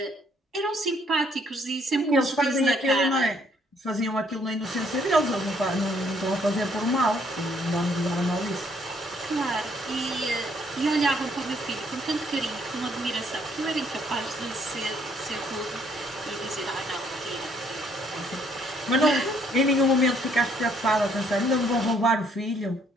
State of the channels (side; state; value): both; normal; correlation 0.66